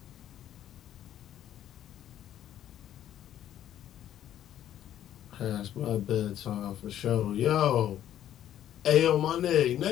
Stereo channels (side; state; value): right; quieter; 11.4 dB